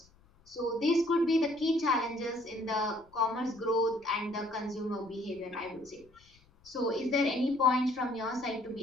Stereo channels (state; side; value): noise; left; rumble, 30 dB below the sound